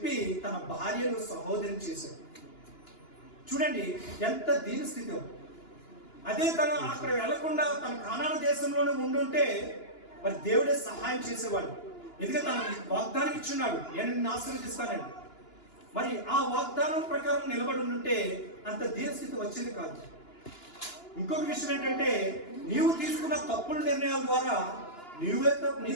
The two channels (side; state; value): right; late; 2.9 ms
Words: తన భార్యను సహోదరిని చేశాడు. చూడండి ఎంత దీన స్థితి. అదే తను అక్కడ వెళ్లకుండా తన కానాను దేశంలోనే ఉండుంటే మరి దేవుడే సహాయం చేసేవాడు. ఎందుకంటే తన వాగ్దానం ఇచ్చున్నాడు, నేను నిన్ను ఆశీర్వదిస్తానండి. మరి ఆ వాగ్దానం ప్రకారం నిలబడి ఉంటే అంత దీనస్థితి వచ్చేది కాదు. ఇంకొక విషయం ఏంటంటే, నీవు తీసుకున్న తప్పుడు నిర్ణయాల ద్వారా